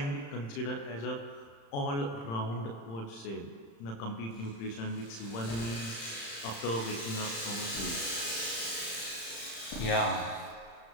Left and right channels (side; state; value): right; late; 35 ms